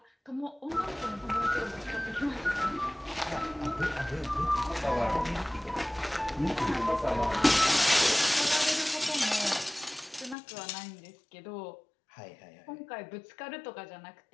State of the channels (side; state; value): right; drops out; at 10.4 s